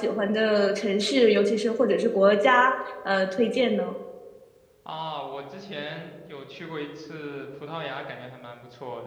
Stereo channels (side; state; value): both; identical; correlation 1.00